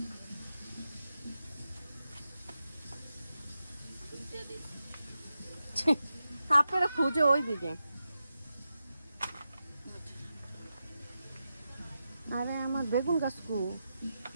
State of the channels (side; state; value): both; inverted; correlation -0.89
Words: আপনারা খুঁজে ওই দিকে। আরে আমার বেগুন গাছ কু,